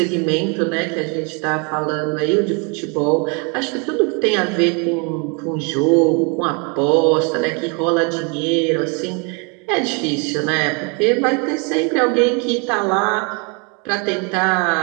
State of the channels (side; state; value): left; quieter; 33.7 dB